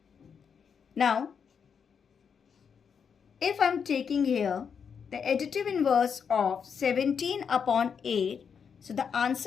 Now, if I'm taking here the additive inverse of 17 upon 8, so the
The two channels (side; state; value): right; quieter; 6.7 dB